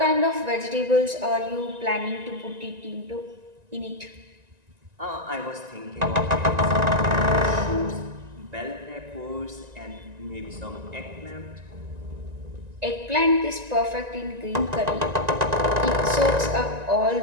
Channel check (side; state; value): left; late; 1.9 ms